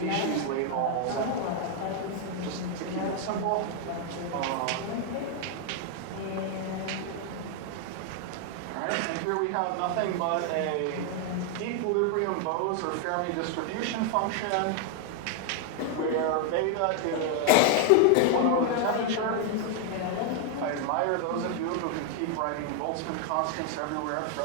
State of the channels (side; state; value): both; different; correlation 0.00